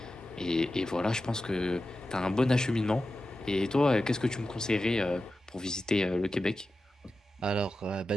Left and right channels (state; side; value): normal; both; correlation 0.92